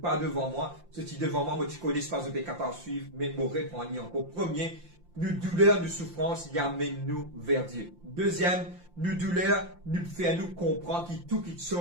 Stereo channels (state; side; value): late; left; 5.8 ms